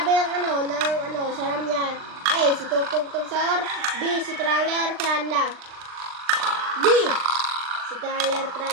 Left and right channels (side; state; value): left; late; 39 ms